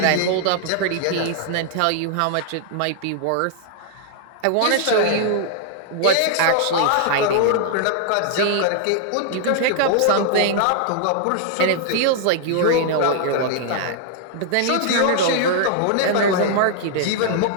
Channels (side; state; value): both; different; correlation -0.01